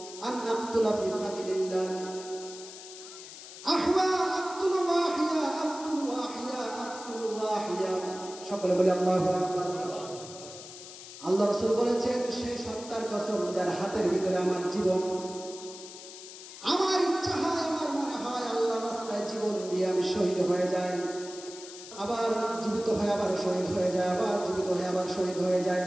আন আকতুলা ফি সাবিলিল্লাহ আহওয়া আকতুলু ওয়াহিয়া আকতুলু ওয়াহিয়া আকতুলু ওয়াহিয়া সকলে বলি আল্লাহু আকবার আল্লাহ রাসূল বলেছেন সেই সত্তার কসম যার হাতের ভিতরে আমার জীবন আমার ইচ্ছা হয় আমার মনে হয় আল্লাহর রাস্তায় জীবন দিয়ে আমি শহীদ হয়ে যাই আবার জীবিত হয়ে আবার শহীদ হয়ে যায় আবার জীবিত হয়ে আবার শহীদ হয়ে যায়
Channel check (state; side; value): noise; left; hiss, 14 dB below the sound